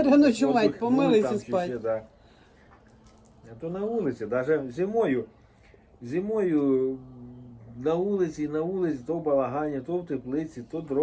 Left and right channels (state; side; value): identical; both; correlation 1.00